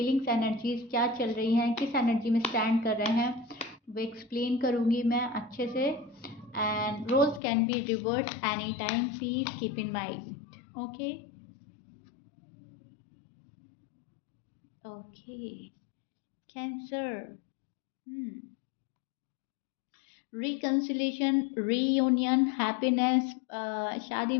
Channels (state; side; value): drops out; right; at 7.4 s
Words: एनर्जीज क्या चल रही हैं, किस एनर्जी में स्टैंड कर रहे हैं, वो एक्सप्लेन करूँगी मैं अच्छे से। And roles can be reverse any time, please keep in mind. Okay okay Cancer, reconciliation, reunion, happiness, शादी